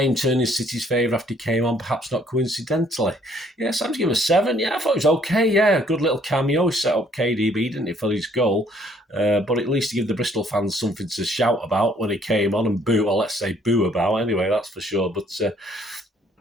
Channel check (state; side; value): normal; both; correlation 0.63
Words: turned in City's favour after he came on, perhaps not coincidentally. Yeah, Sam's given a 7. Yeah, I thought it was okay. Yeah, a good little cameo. He set up KDB, didn't he, for his goal. But at least he gave the Bristol fans something to shout about when he came on and boo, or let's say boo about anyway, that's for sure. But